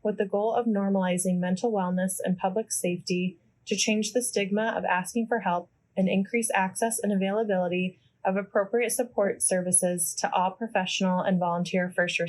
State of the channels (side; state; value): both; identical; correlation 1.00